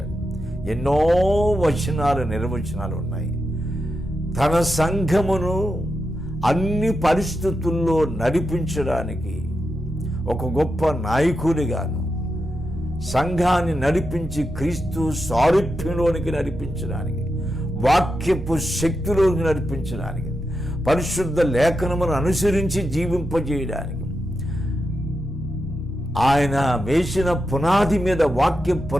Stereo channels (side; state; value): both; normal; correlation 0.87